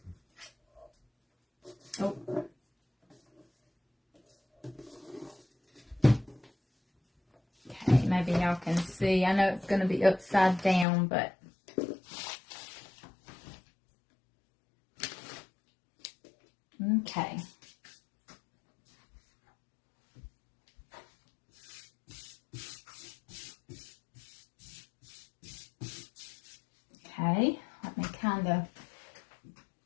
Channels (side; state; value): right; drops out; at 10.9 s